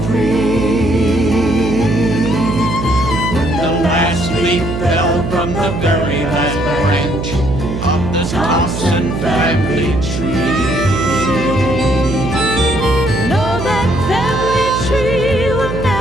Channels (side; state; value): right; noise; hum, 5 dB below the sound